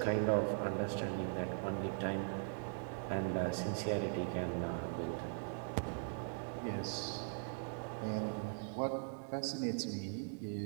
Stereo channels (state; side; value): silent; left; digital silence